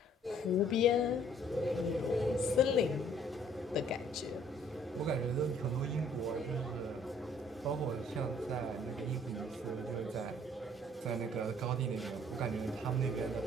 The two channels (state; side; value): normal; both; correlation 0.59